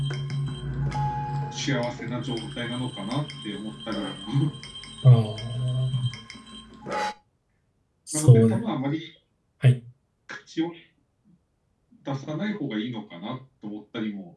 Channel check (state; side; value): identical; both; correlation 1.00